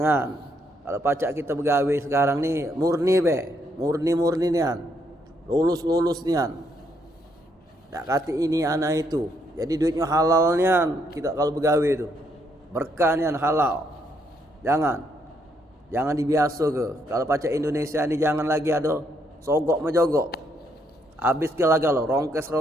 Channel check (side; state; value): both; normal; correlation 0.73